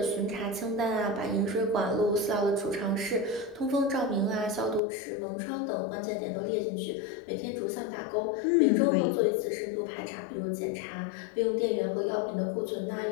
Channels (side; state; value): right; drops out; at 4.8 s